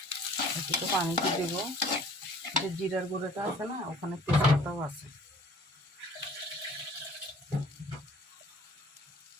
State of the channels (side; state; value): both; normal; correlation 0.52